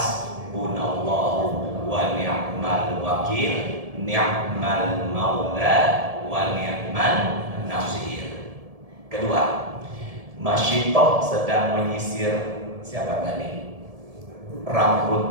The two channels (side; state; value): left; late; 1.7 ms